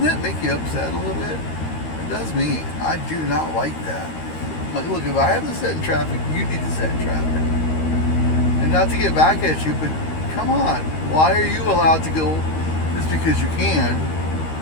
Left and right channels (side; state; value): right; late; 13 ms